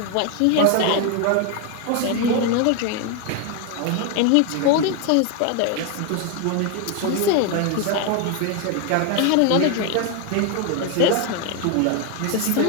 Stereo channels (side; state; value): both; different; correlation 0.01